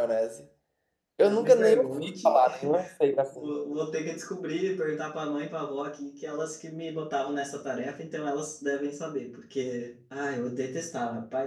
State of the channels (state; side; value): identical; both; correlation 1.00